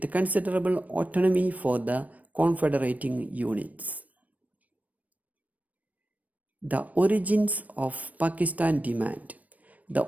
considerable autonomy for the confederating units. The origins of Pakistan demand. The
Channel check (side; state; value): left; late; 0.072 ms